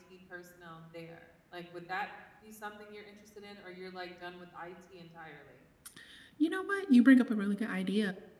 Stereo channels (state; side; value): identical; both; correlation 1.00